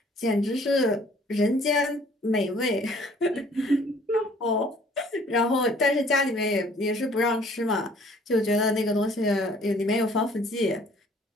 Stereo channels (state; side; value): normal; both; correlation 0.57